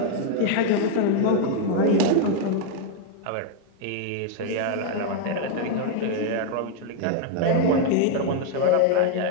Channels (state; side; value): different; both; correlation 0.00